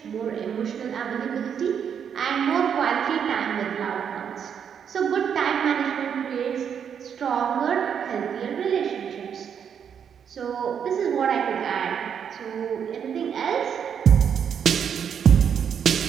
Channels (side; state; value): left; quieter; 7.8 dB